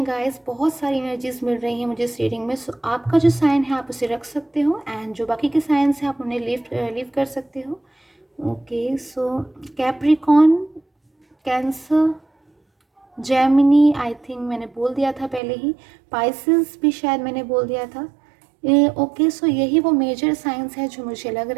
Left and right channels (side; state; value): left; drops out; at 15.4 s